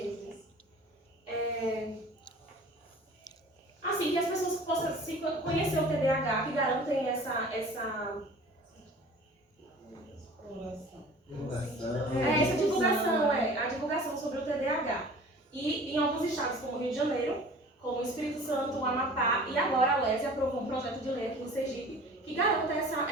isso? Assim, que as pessoas possam se conhecer o TDAH, que garantem essa divulgação, a divulgação sobre o TDAH. E em alguns estados, como o Rio de Janeiro, como o Espírito Santo, o Amapá e agora a UESE aprovou um projeto de lei aqui no Sergipe que garanta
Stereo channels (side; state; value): both; normal; correlation 0.44